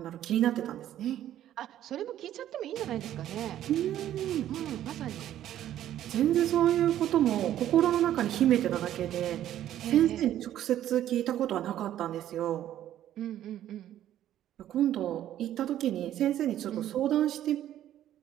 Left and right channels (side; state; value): left; quieter; 12.0 dB